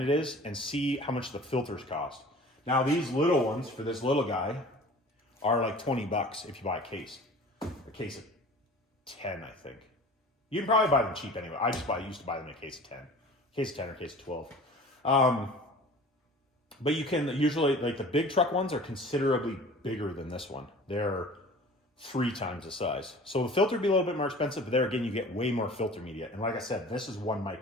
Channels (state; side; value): normal; both; correlation 0.43